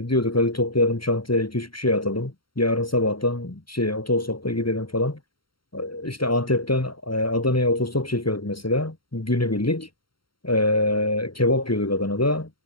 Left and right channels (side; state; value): right; late; 0.73 ms